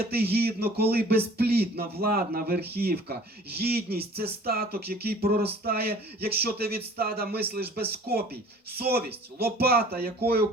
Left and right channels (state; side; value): normal; both; correlation 0.49